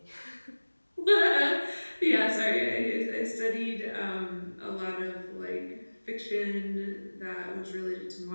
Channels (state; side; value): inverted; both; correlation -1.00